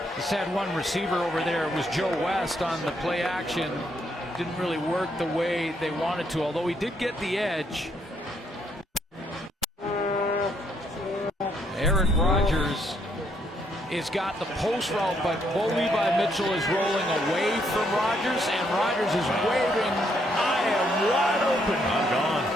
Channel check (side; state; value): both; normal; correlation 0.73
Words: Just had one receiver over there. It was Joe West on the play action. Didn't really work the way they wanted to, although he did get the edge. Aaron Rodgers has got the post route, but Bo Levi Mitchell is rolling away from Rodgers, and Rodgers is waving, I am wide open. I'm gone.